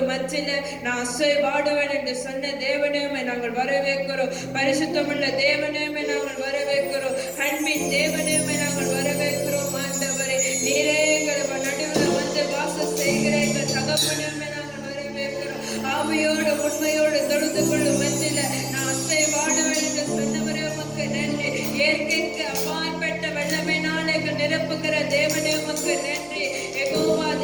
மத்தியில நான் அசைவாடுவேன் என்று சொன்ன தேவனே, நாங்கள் வரவேற்கிறோம். பரிசுத்தமுள்ள தேவனே, நாங்கள் வரவேற்கிறோம். அன்பின் தேவனே, நாங்கள் வரவேற்கிறோம். ஆண்டவரே, நீரே எங்கள் நடுவில் வந்து வாசம் செய்கிற எங்கள் தகப்பனே, நாங்கள் வரவேற்கிறோம். ஆவியோடு உண்மையோடு தொழுது கொள்ளும் மத்தியில நான் அசைவாடுவேன் என்று சொன்னவரே, உமக்கு நன்றி. இயற்கைக்கு அப்பாற்பட்ட வெள்ளமையினால் எங்கள் நிரப்புகிற தேவனே, உமக்கு நன்றி. யெகோவா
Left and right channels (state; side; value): noise; left; hum, 28 dB below the sound